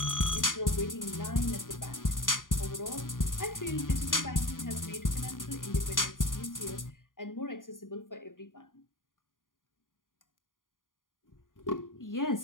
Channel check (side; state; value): right; late; 0.89 ms